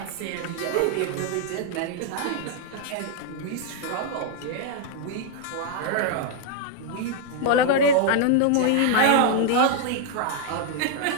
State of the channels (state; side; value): different; both; correlation -0.01